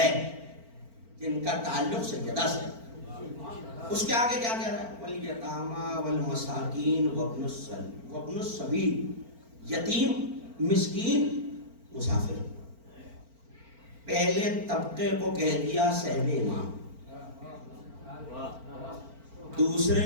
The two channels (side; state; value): left; late; 4.4 ms